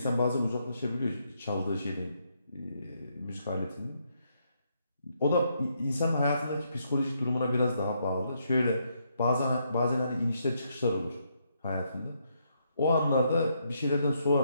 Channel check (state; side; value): inverted; both; correlation -0.76